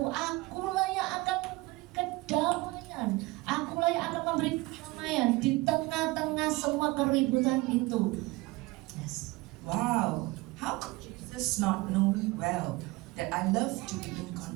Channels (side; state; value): left; quieter; 22.0 dB